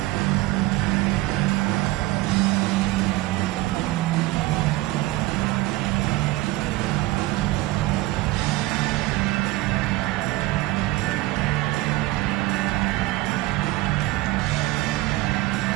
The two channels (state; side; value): quieter; left; 18.8 dB